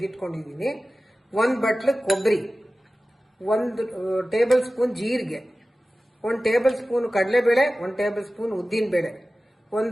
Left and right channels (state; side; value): normal; both; correlation 0.96